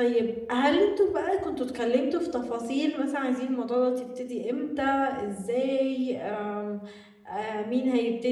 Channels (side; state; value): both; identical; correlation 1.00